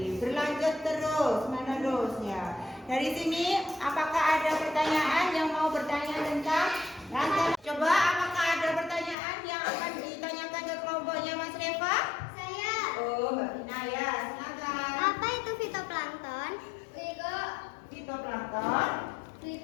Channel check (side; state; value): right; drops out; at 9.2 s